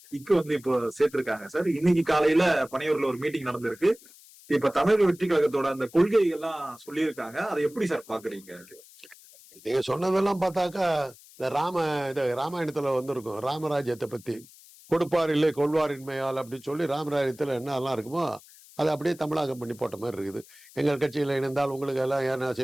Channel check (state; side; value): noise; left; hiss, 23 dB below the sound